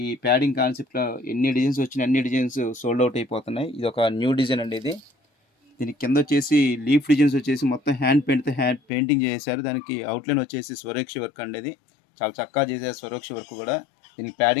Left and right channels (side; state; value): right; drops out; at 8.8 s